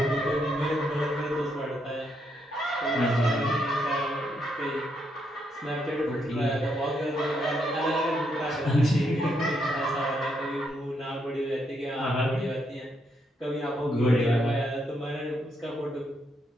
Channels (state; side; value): normal; both; correlation 0.77